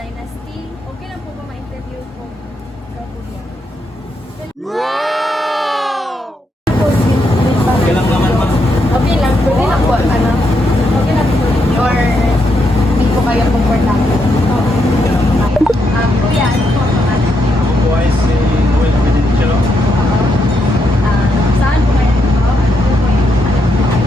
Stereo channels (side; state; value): both; normal; correlation 0.80